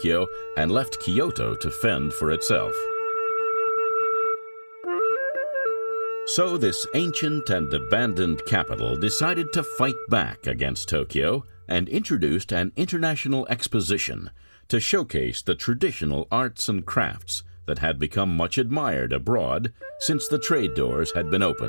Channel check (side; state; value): both; inverted; correlation -1.00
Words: and left Kyoto to fend for itself. So this ancient and abandoned capital decided to fight back against Tokyo and introduced an international exposition to showcase the traditional arts and crafts that had become much admired abroad since the trade doors had been